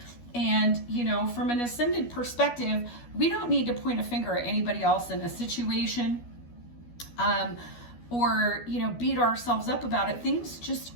And, you know, from an ascended perspective, we don't need to point a finger at anybody else in a situation, or, you know, beat ourselves up about it. Things just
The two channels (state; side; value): late; right; 12 ms